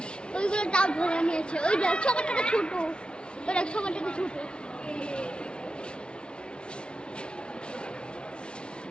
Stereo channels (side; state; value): right; late; 0.056 ms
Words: ওইগুলো তাও ধরে নিয়েছে ওই দেখ সবারটাকে ছোট ওই দেখ সবারটাকে ছোট